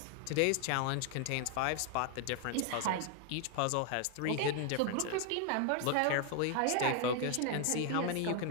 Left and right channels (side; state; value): both; different; correlation 0.00